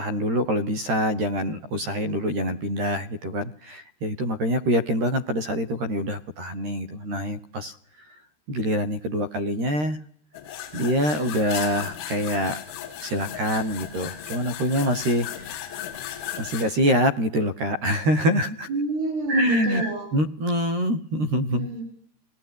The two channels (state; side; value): late; left; 13 ms